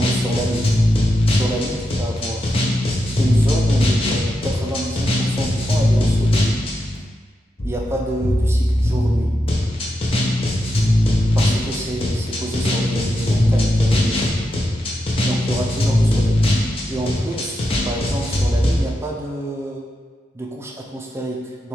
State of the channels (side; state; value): both; normal; correlation 0.86